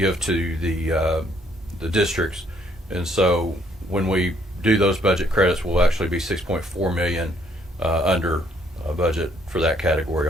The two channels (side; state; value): both; normal; correlation 0.67